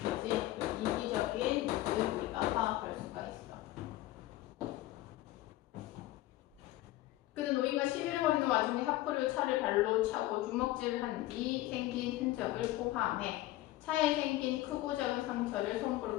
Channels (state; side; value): quieter; right; 16.5 dB